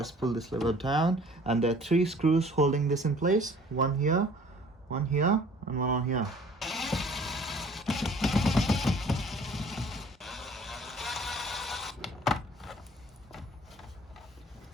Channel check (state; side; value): normal; both; correlation 0.52